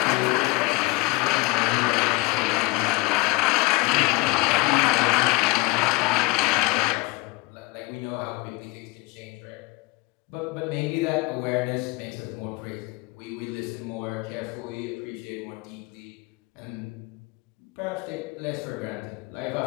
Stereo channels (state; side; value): quieter; right; 21.9 dB